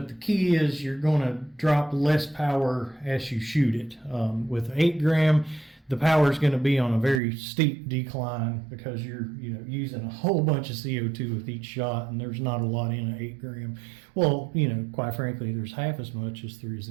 the key is you're going to drop less power as you shoot it. With 8 gram, the power is going to be on a very steep decline because you're using a whole bunch of CO2 with each shot, and there's not a lot in an 8 gram. Well, quite frankly, there's half as much as there is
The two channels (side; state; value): left; drops out; at 7.2 s